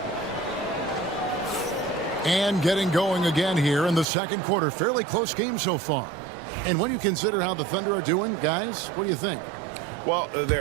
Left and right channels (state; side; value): drops out; left; at 4.0 s